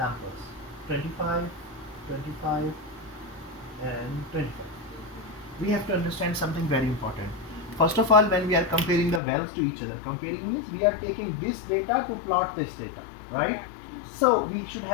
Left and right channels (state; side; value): drops out; right; at 9.2 s